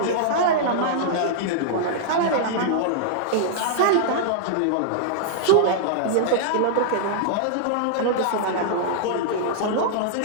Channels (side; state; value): both; different; correlation -0.01